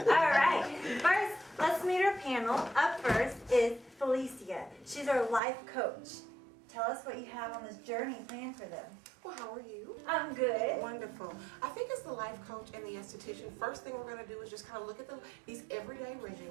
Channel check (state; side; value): drops out; left; at 5.4 s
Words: All right. First, let's meet our panel. Up first is Felicia. She's our life coach. Tell us what you have on this journey planned for them. Well, how are you? I'm good. Wonderful. I think as the life coach and the esthetician, first thing we're going to do is just kind of look at these everyday